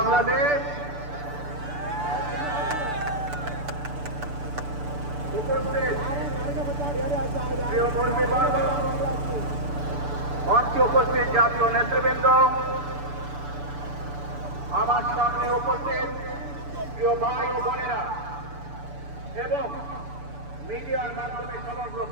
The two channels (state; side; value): late; left; 6.9 ms